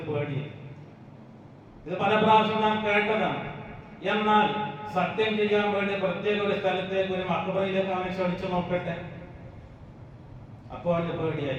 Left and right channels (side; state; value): both; identical; correlation 1.00